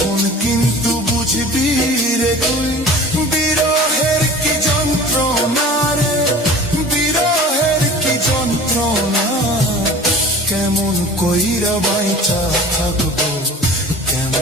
কিন্তু বুঝবি রে তুই বিরহের কি যন্ত্রণা রে, বিরহের কি যন্ত্রণা। কেমন কইরা বাইচা থাকবো,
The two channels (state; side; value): normal; both; correlation 0.42